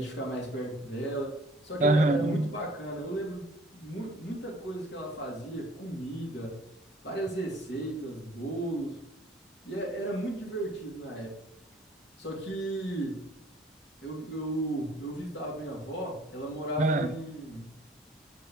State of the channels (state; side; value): normal; both; correlation 0.54